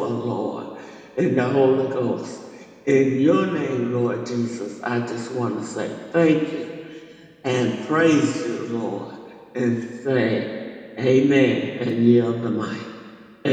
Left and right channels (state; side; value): identical; both; correlation 1.00